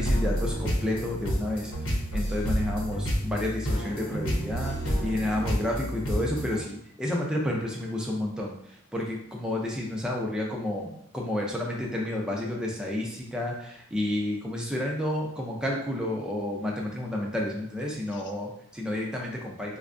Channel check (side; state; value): both; normal; correlation 0.76